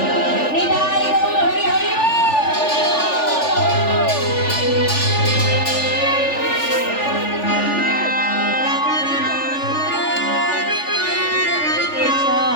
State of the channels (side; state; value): right; late; 3.4 ms